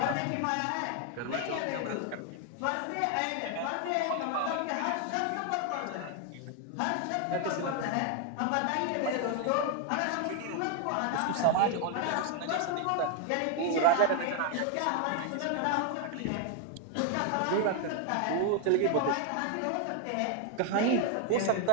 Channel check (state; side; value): different; both; correlation 0.00